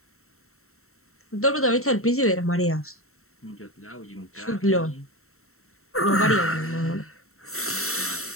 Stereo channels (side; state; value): right; late; 0.63 ms